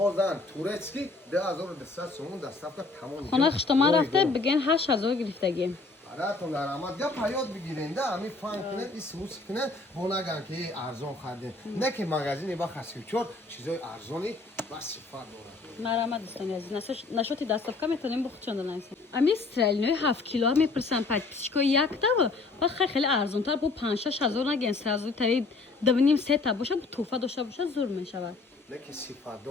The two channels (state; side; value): quieter; right; 3.7 dB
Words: تورецکی 2200 سومون دستافکا تمام خونه خشتما رفته بگن 8000 گرفتگی براتون در آمد یا پیاد بگیرین ده همین فان کنه این سوس کنه با نگن که ارزان خرده نه که مگزینی با خسیوچور چیزای ارزانی با صفت داره مرامت دوستان عزیز نشاتی دستافکا میتونیم بخوچوندن ایسا امی استرالینوی 7 کیلو هم میپرسن پد پیشکو یک تا و خیلی ارزان تر با 5-6 هزار نگن 3000 تایی 2.5-3 تا باشه با توفا داشته باشه زور میشود نه که صفت